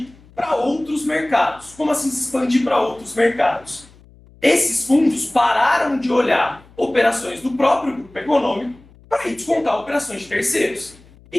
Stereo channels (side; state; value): left; noise; hum, 26 dB below the sound